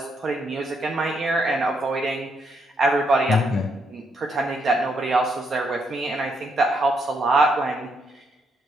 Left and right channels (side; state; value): both; normal; correlation 0.76